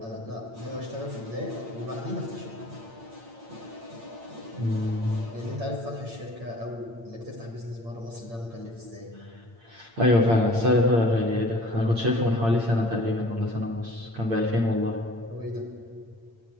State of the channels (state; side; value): late; left; 8.8 ms